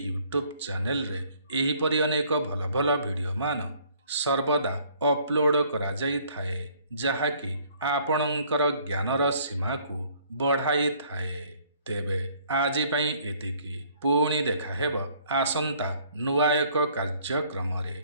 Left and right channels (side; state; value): both; inverted; correlation -0.60